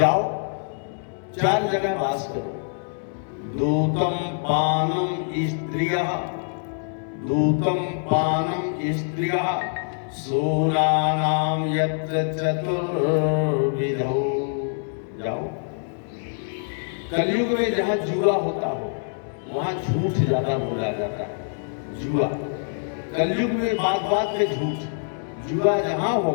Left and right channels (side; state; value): right; silent; digital silence